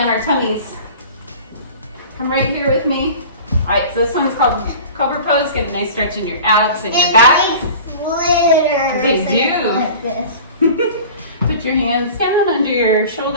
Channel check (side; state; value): both; inverted; correlation -0.41